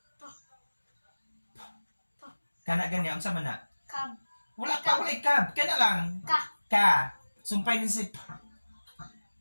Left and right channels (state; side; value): inverted; both; correlation -1.00